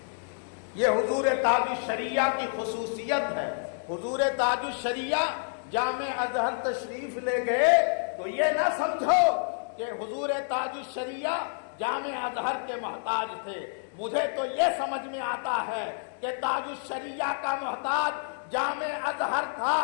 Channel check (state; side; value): silent; right; digital silence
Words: یہ حضور تاج الشریعہ کی خصوصیت ہے. حضور تاج الشریعہ جامع ازہر تشریف لے گئے تو یہ نہ سمجھو کہ حضور تاج الشریعہ جامع ازہر کے محتاج تھے. مجھے تو یہ سمجھ میں آتا ہے کہ تاج الشریعہ کا محتاج جامع ازہر تھا